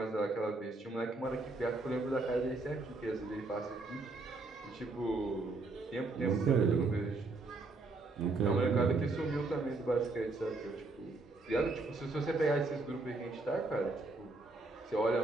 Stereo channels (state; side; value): quieter; left; 3.4 dB